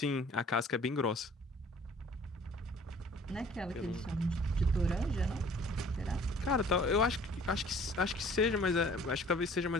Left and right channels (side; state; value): both; normal; correlation 0.52